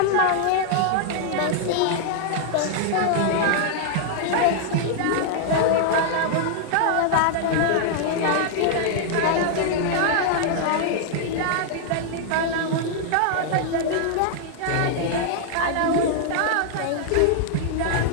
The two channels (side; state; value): both; different; correlation -0.01